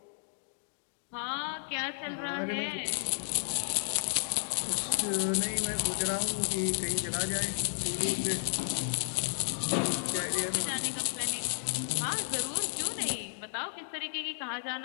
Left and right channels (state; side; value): silent; right; digital silence